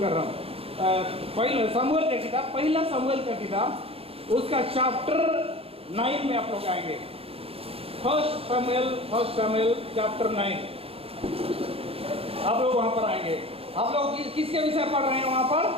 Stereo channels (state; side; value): late; left; 0.28 ms